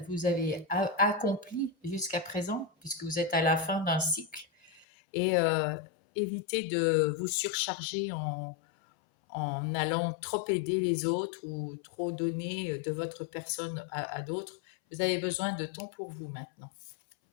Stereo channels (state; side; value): drops out; right; at 4.9 s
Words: avez accompli jusqu'à présent, puisque vous êtes à la fin d'un cycle. Et évitez de vous surcharger en allant trop aider les autres ou trop donner de votre personne à d'autres. Vous avez besoin de temps pour vous maintenant.